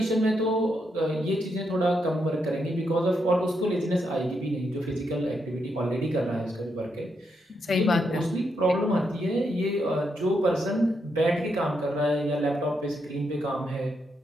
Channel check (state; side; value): normal; both; correlation 0.80